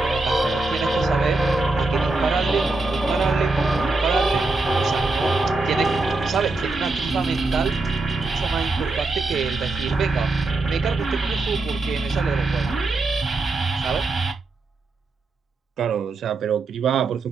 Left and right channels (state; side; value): quieter; left; 3.4 dB